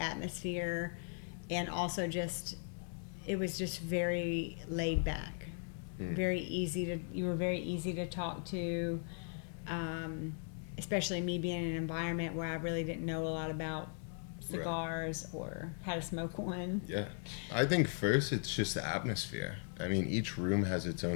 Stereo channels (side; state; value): right; silent; 52 dB below the other